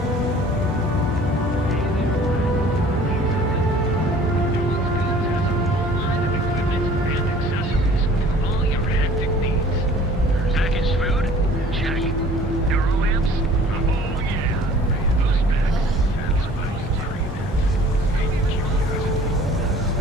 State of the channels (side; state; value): both; normal; correlation 0.50